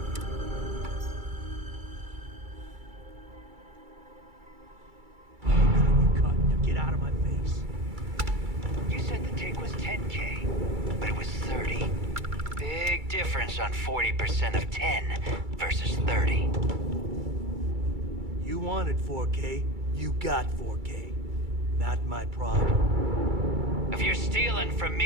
Get out of my face. You said the take was 10K. around 40% of 10 versus 30. You wanted 4K, you got 4K. Not my problem. If you're stealing from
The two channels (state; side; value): late; left; 2.3 ms